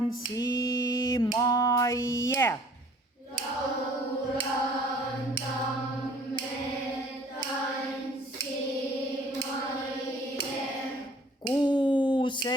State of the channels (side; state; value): both; normal; correlation 0.54